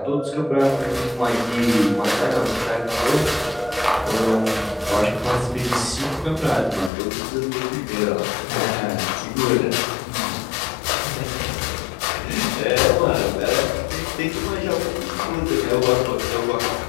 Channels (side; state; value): right; drops out; at 6.9 s